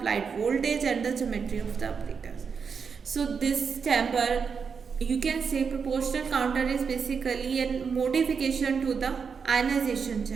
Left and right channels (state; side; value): quieter; left; 6.0 dB